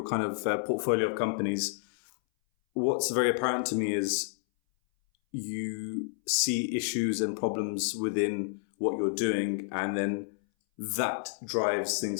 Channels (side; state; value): right; silent; 58 dB below the other